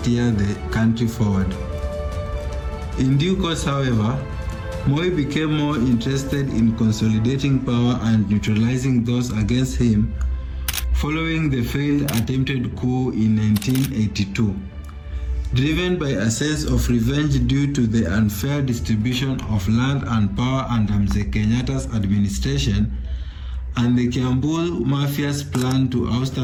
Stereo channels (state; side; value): identical; both; correlation 1.00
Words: the country forward. In due course, however, Moi became more interested in consolidating power and neutralizing those against him following the failed attempted coup in 1982. Driven by a sense of revenge due to the unfair distribution of land and power under Mzee Kenyatta's administration and the Kiambu Mafia's plan to oust